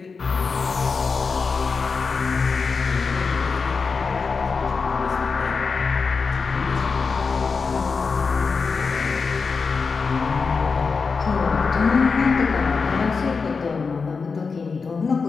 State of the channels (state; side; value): quieter; right; 4.9 dB